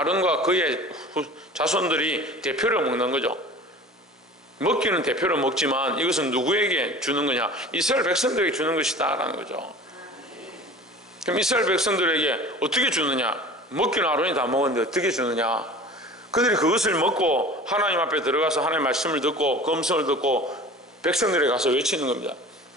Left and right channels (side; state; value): both; normal; correlation 0.40